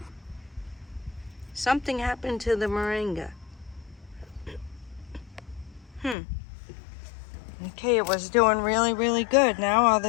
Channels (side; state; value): right; drops out; at 6.2 s